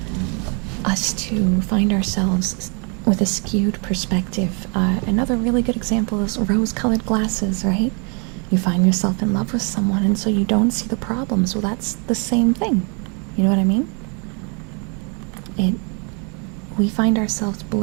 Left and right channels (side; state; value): left; quieter; 36.4 dB